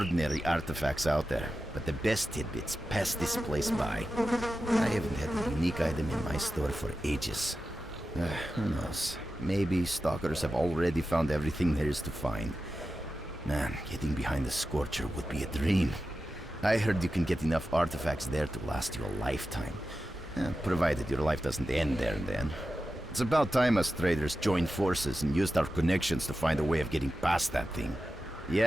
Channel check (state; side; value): normal; both; correlation 0.92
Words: artifacts out there, but the best tidbits pass this place by. I haven't had a unique item in my store for ages. Who knows? Maybe stalkers have already found everything there is to find. Man, getting behind the Scorcher would be a dream. I heard you can get enough artifacts there to last you a lifetime. Provided your life doesn't end there and then. It's about time us traders joined forces and used our connections to find a way of getting past that thing.